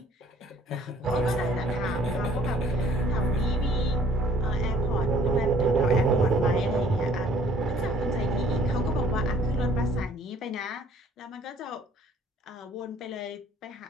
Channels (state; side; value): normal; both; correlation 0.58